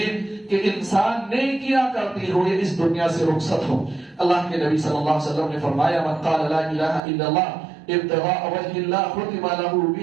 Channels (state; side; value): drops out; left; at 7.0 s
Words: ہے کہ انسان نیکیاں کرتے ہوئے اس دنیا سے رخصت ہو۔ اللہ کے نبی صلی اللہ علیہ وسلم نے فرمایا من قال لا الہ الا اللہ ابتغاء وجہ اللہ ختم له